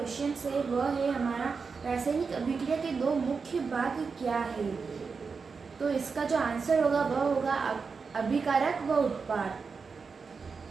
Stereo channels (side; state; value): left; quieter; 5.1 dB